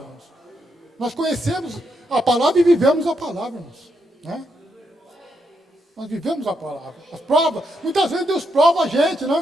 irmãos. Nós conhecemos a palavra e vivemos a palavra, irmãos. Né? Nós vivemos a palavra. As provas, muitas vezes Deus prova a gente,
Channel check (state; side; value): normal; both; correlation 0.80